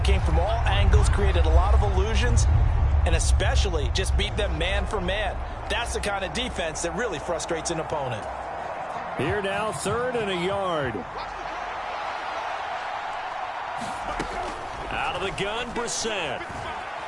Came from all angles, created a lot of illusions, and especially just beat them man for man. That's the kind of defense that really frustrates an opponent. Here now, 3rd and a yard. Out of the gun, Brissett.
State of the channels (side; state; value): both; identical; correlation 1.00